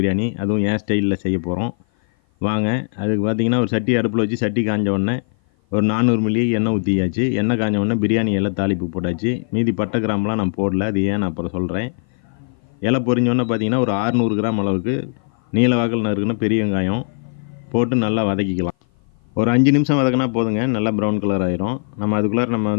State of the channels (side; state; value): right; silent; 55 dB below the other